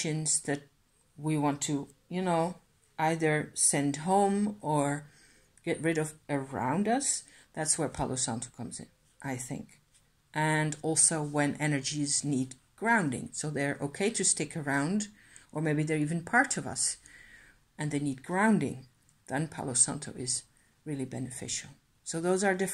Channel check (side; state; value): both; identical; correlation 1.00